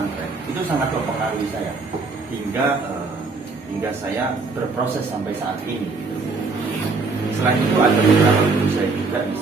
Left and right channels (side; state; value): left; quieter; 4.0 dB